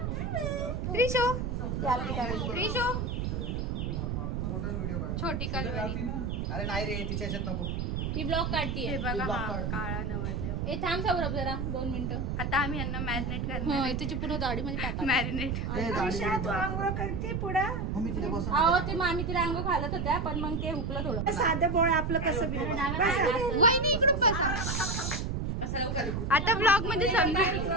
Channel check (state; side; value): noise; right; rumble, 1 dB below the sound